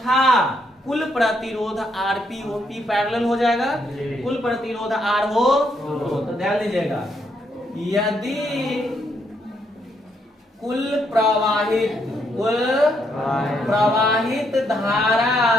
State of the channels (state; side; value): normal; both; correlation 0.75